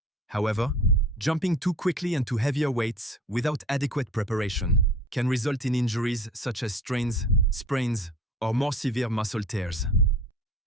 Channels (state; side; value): normal; both; correlation 0.43